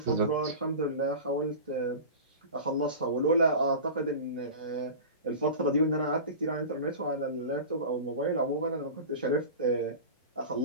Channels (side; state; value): both; inverted; correlation -0.32